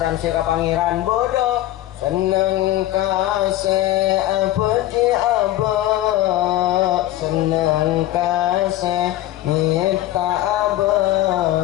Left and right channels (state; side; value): quieter; right; 14.7 dB